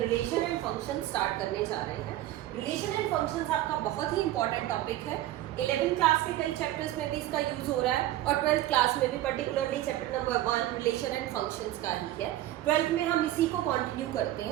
रिलेशन एंड फंक्शन स्टार्ट करने जा रहे हैं. रिलेशन एंड फंक्शंस आपका बहुत ही इंपॉर्टेंट टॉपिक है. 11th क्लास के कई चैप्टर्स में भी इसका यूज हो रहा है और 12th क्लास में भी particularly chapter number 1 relation and functions का ही है. 12th में हम इसी को कंटिन्यू करते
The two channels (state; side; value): quieter; left; 14.5 dB